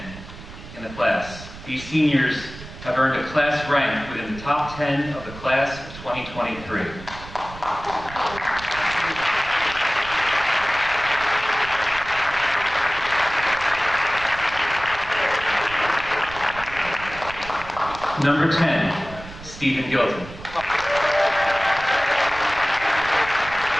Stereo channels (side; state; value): right; noise; rumble, 15 dB below the sound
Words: in the class. These seniors have earned a class rank within the top 10 of the class of 2023. Number 10, Stephen Gilton.